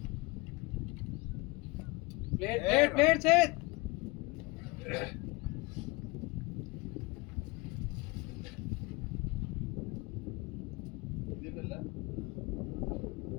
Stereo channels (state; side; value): quieter; right; 24.8 dB